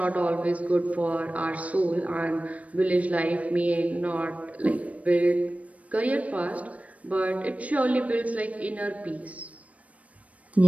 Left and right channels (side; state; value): left; late; 0.067 ms